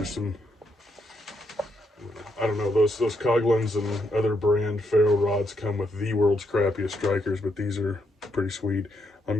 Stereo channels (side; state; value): both; normal; correlation 0.78